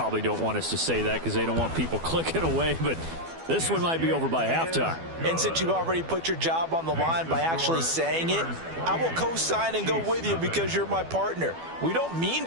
don't want us to say that because they don't want people clicking away. But this one might be over by halftime. And since you've already put your job on the line by actually saying it, I will co-sign and go with you because you're my partner. We don't mean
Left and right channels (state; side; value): late; left; 12 ms